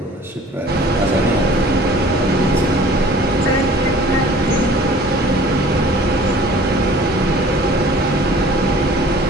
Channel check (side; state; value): both; normal; correlation 0.49